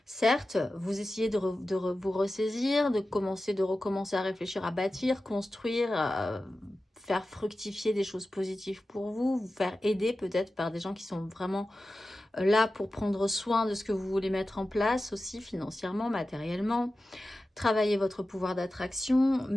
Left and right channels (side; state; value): both; normal; correlation 0.94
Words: Certes, vous essayez de vous ressaisir, de recommencer à réfléchir, à bâtir, construire, faire fructifier des choses positives pour vous, vous faire aider peut-être par des gens qui sont vraiment là pour prendre soin de ce que vous voulez mettre en place aussi financièrement, matériellement. Travailler votre pouvoir d'attraction,